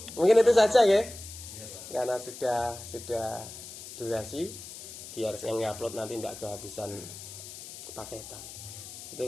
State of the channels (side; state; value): left; noise; hiss, 13 dB below the sound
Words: Mungkin itu saja ya. Karena sudah durasi, biar yang upload nanti tidak kehabisan paketan. Itu